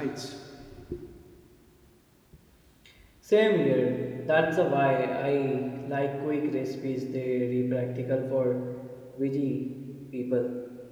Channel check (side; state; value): both; identical; correlation 1.00